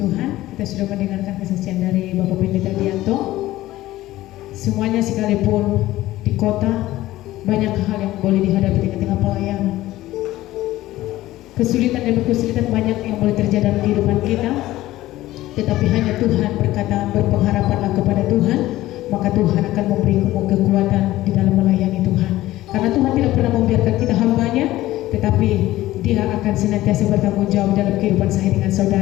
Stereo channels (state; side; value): quieter; right; 16.0 dB